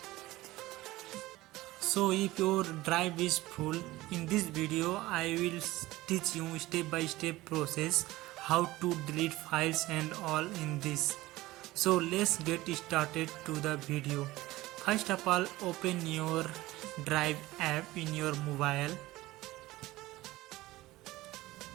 So if your drive is full, in this video I will teach you step by step process how to delete files and all in this. So let's get started to the video. First of all, open your Drive app in your mobile.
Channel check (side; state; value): left; quieter; 18.2 dB